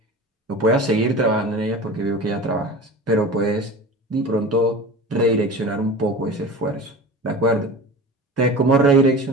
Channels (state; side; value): normal; both; correlation 0.34